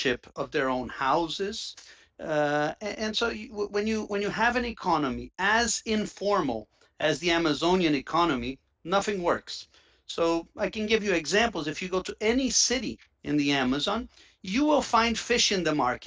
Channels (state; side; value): identical; both; correlation 1.00